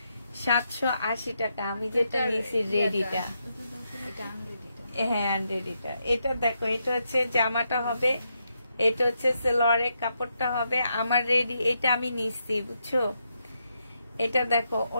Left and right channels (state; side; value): inverted; both; correlation -0.81